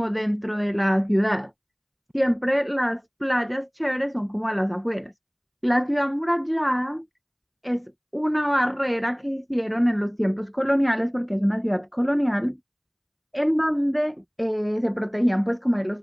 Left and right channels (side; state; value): both; identical; correlation 1.00